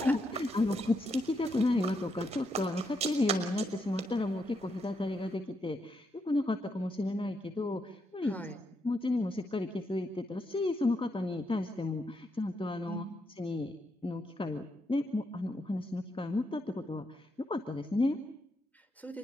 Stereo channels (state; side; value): normal; both; correlation 0.80